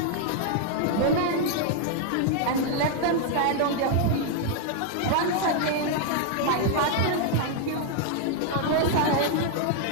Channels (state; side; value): different; both; correlation 0.00